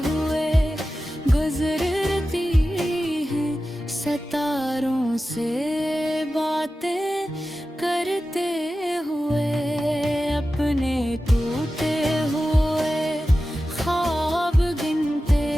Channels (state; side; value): normal; both; correlation 0.94